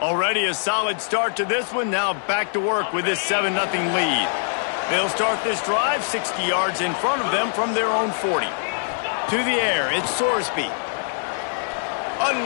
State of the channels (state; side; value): silent; right; digital silence